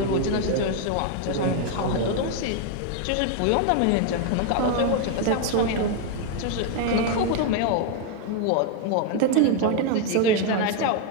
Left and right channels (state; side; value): different; both; correlation 0.01